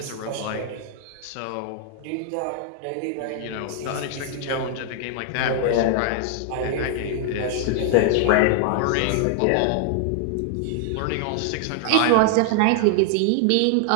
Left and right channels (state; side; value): different; both; correlation 0.00